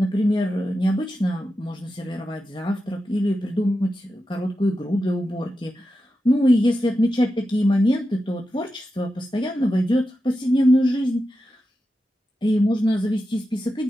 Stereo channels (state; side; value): normal; both; correlation 0.90